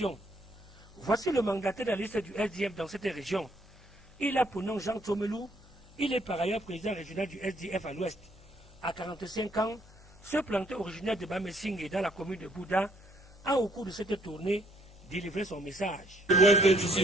Voici le mandataire de la liste du SDF dans cette région. Il a pour nom Jean Tomelou. Il est par ailleurs président régional du SDF à l'Ouest. À 45 ans, ce planteur originaire de Bamessing dans la commune de Bouddha a au cours de cette tournée délivré son message. L'Ouest d'ici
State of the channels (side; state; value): left; noise; hum, 22 dB below the sound